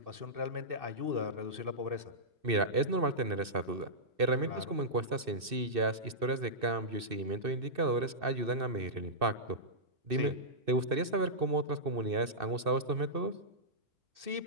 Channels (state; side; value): late; left; 2.6 ms